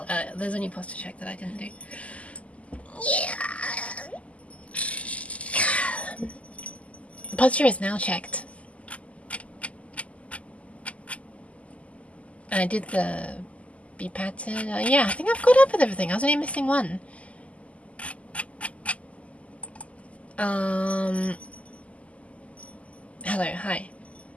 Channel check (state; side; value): late; right; 0.066 ms